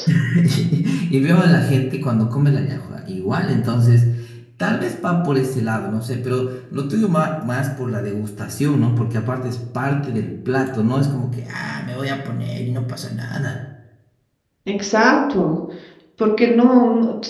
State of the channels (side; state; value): both; identical; correlation 1.00